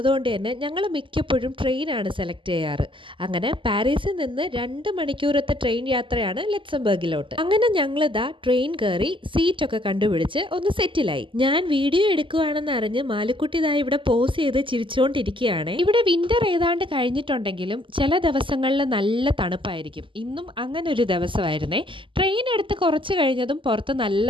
തന്നെ ഞങ്ങൾ മിക്കപ്പോഴും ട്രെയിനാണ് സെലക്ട് ചെയ്യാറ്. അങ്ങനെ പാരീസിൽ നിന്ന് 2 മണിക്കൂറത്തെ ട്രെയിൻ യാത്രയാണ് ലക്സംബർഗിലോട്ട്. അങ്ങനെ ഞങ്ങളിതാ ട്രെയിൻ കയറി സീറ്റൊക്കെ കണ്ടുപിടിച്ച് ഒന്ന് സെറ്റിലായി. ഞാൻ വീഡിയോ എടുക്കുകയാണെന്ന് അറിഞ്ഞ് മാലുക്കുട്ടി ഇതാ ഇവിടെ പോസ് ചെയ്ത് ചിരിച്ചുകൊണ്ടിരിക്കുകയാണ്. ഇവിടെ വിന്റർ ഏതാണ്ട് കഴിഞ്ഞിട്ടുണ്ടെങ്കിലും ചില ദിവസങ്ങളിൽ നല്ല തണുപ്പായിരിക്കും. ഇന്നും അങ്ങനെ ഒരു ദിവസമായിരുന്നേ. ട്രെയിൻ എടുത്ത് കുറച്ച് കഴിഞ്ഞതും പുറത്ത് നല്ല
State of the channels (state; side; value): late; left; 0.25 ms